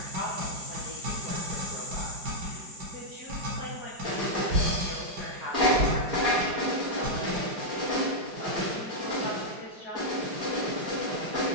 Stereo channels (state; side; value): late; left; 4.9 ms